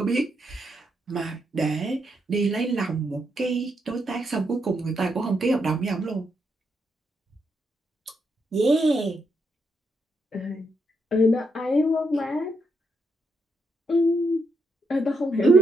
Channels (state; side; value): normal; both; correlation 0.80